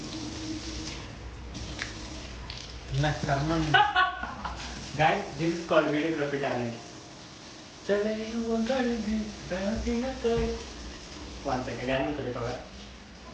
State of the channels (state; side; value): identical; both; correlation 1.00